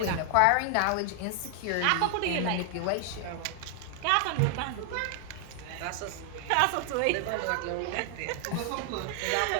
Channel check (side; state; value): both; different; correlation 0.00